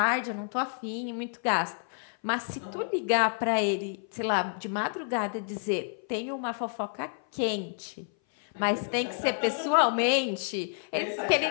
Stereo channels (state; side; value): silent; right; 57 dB below the other